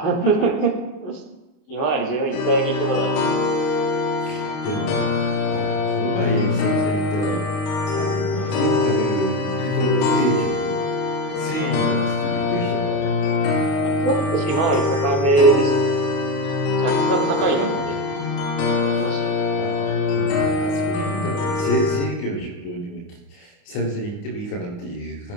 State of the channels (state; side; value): late; right; 28 ms